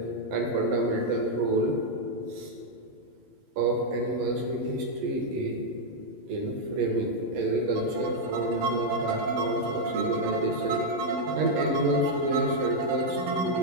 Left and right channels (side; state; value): left; late; 11 ms